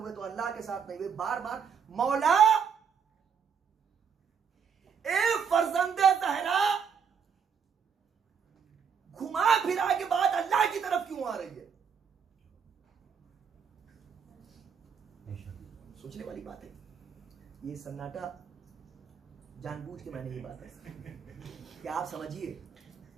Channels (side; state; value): left; quieter; 6.8 dB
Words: तो अल्लाह के साथ नहीं हुए। बार बार मौला ए फर्जंदे ज़हरा घुमा फिरा के बाद अल्लाह की तरफ क्यों आ रही है? सोचने वाली बात है। ये सन्नाटा जानबूझ के मैंने ये बात है कि आप समझिए,